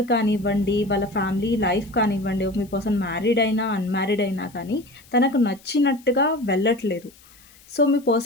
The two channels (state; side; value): noise; left; hiss, 26 dB below the sound